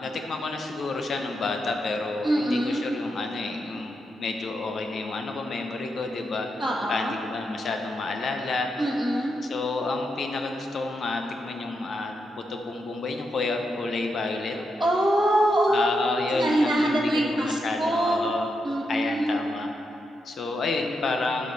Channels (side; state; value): both; normal; correlation 0.84